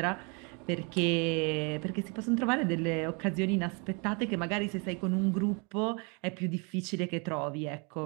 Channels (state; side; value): quieter; left; 33.0 dB